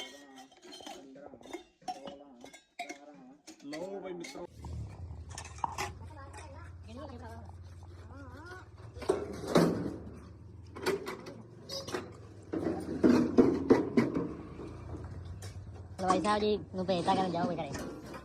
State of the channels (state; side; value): identical; both; correlation 1.00